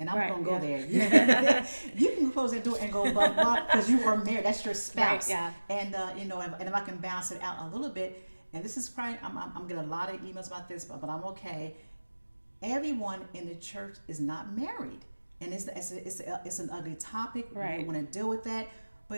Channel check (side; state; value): both; inverted; correlation -1.00